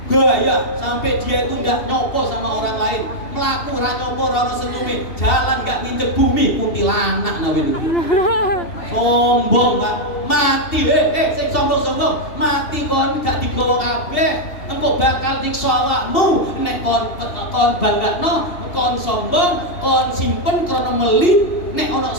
Gaya sampai dia itu nggak nyopo sama orang lain, melaku ra nyopo ra ono senyume, jalan nggak nginjek bumi, kuntilanak nawe itu. Sombong Pak, mati sing sombong mati kon gak digawa kabeh, engko bakal nyiksa awakmu nek kon banggakno, kon sombong, kon simpen krana meli, nek ana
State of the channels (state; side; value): late; right; 2.7 ms